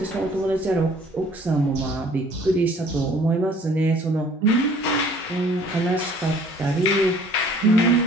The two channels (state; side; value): normal; both; correlation 0.54